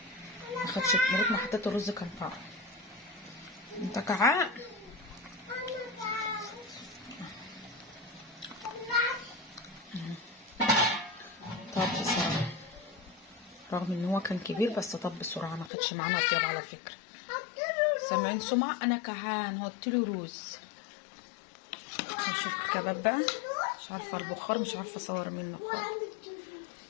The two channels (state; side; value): drops out; right; at 15.7 s